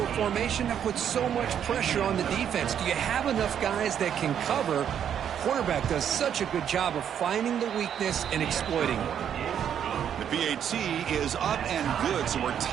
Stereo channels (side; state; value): left; quieter; 9.0 dB